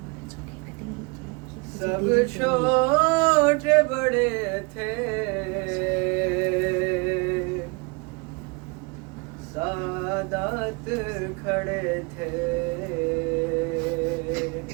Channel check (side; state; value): left; quieter; 30.1 dB